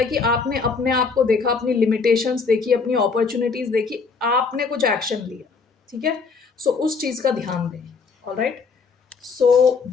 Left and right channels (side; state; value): right; quieter; 4.9 dB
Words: कि आपने अपने आप को देखा, अपनी लिमिटेशंस देखी, अपनी अपॉर्चुनिटीज देखी, आपने कुछ एक्शन लिया, ठीक है। सो उस चीज का ध्यान दें। Alright, so